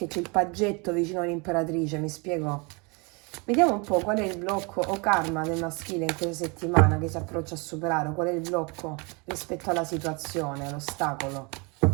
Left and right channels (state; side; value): quieter; left; 30.1 dB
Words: c'è il paggetto vicino all'imperatrice, mi spiego? Vediamo un po' qual è il blocco o karma del maschile in questa settimana che si approccia a superare, qual è il blocco rispetto alla situazione, l'ostacolo.